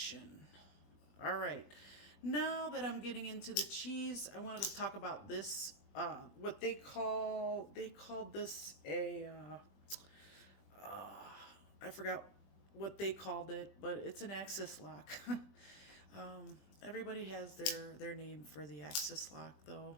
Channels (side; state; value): right; late; 20 ms